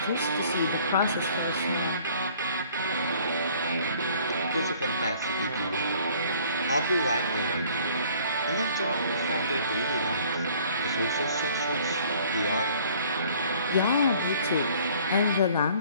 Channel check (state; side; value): inverted; both; correlation -0.55